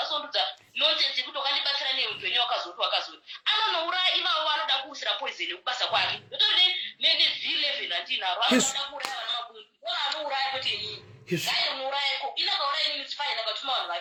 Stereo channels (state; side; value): identical; both; correlation 1.00